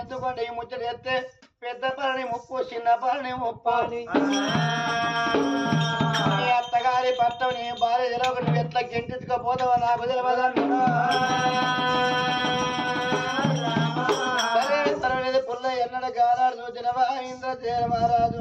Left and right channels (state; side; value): identical; both; correlation 1.00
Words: ఎందుకంటే ఈ ముచ్చట ఎత్తే పెద్ద పని ముప్పు చిన్న పని ముప్పు నీ అత్తగారి భర్త నీ భార్య తెలవక నువ్వు ఎట్లా గెంటెత్తుకపోతావా నాకు తెలియదన్నా సరే పర్వాలేదు పుల్ల ఎన్నడ గారాడు చూసినవా ఇంద్రసేన మహారాజు